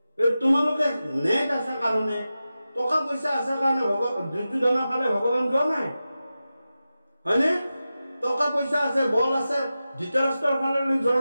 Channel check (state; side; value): inverted; both; correlation -0.93